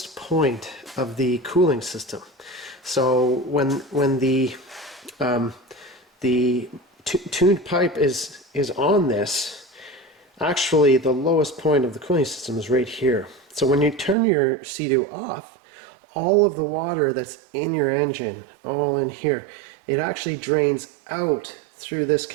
point of the cooling system. So when the tuned pipe is on this, actually the lowest point of the cooling system is right here. So when you turn your Sea-Doo off, all of the water that's in your engine, all in here, it actually drains out through this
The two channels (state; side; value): drops out; left; at 14.2 s